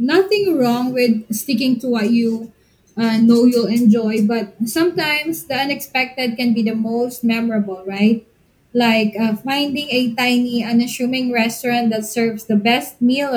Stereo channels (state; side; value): identical; both; correlation 1.00